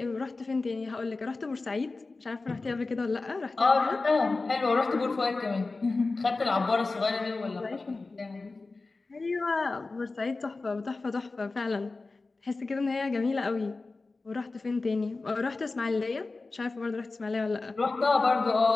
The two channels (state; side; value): quieter; right; 3.6 dB